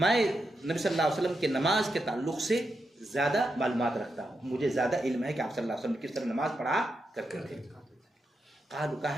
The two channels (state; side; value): normal; both; correlation 0.86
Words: मैं नबी सल्लल्लाहु अलैहि वसल्लम के नमाज के ताल्लुक से ज़्यादा मालूमात रखता हूँ, मुझे ज़्यादा इल्म है कि आप सल्लल्लाहु अलैहि वसल्लम किस तरह नमाज पढ़ा करते थे।